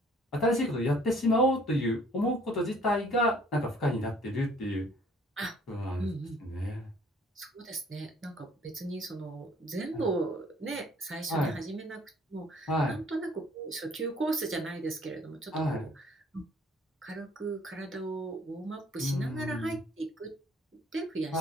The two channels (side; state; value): both; normal; correlation 0.57